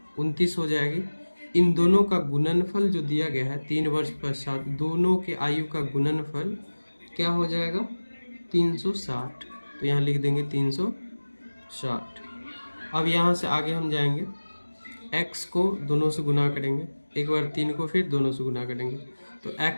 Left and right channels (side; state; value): both; inverted; correlation -1.00